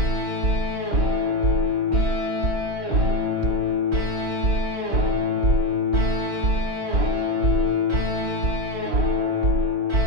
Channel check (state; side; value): late; left; 3.8 ms